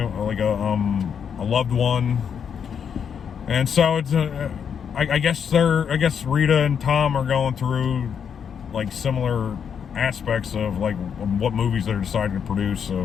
like a loved one, and so it's I guess Rita and Tom are going through like similar aspects of like what movies they're deciding to produce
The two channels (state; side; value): quieter; right; 7.4 dB